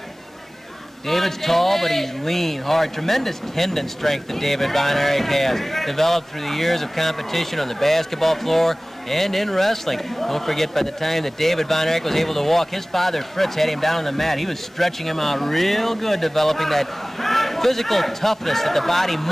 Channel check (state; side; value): normal; both; correlation 0.98